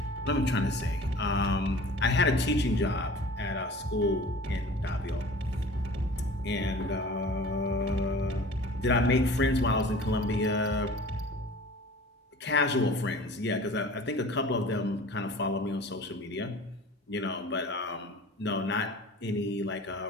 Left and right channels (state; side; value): normal; both; correlation 0.43